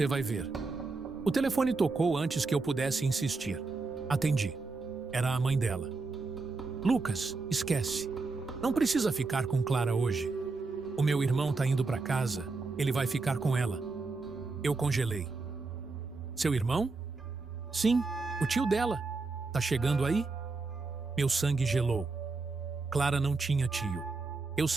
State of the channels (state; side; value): quieter; left; 3.9 dB